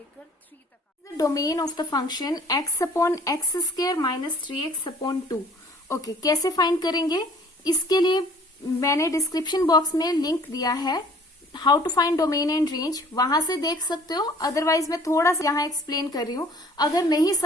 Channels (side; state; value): both; normal; correlation 0.54